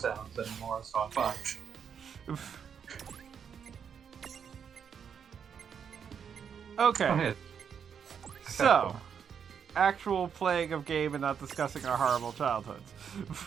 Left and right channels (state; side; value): quieter; left; 7.4 dB